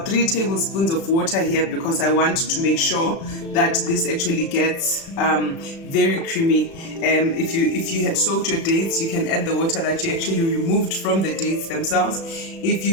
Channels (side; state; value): right; late; 36 ms